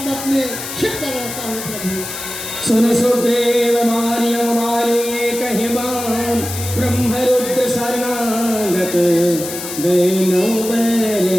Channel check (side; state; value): left; noise; hiss, 8 dB below the sound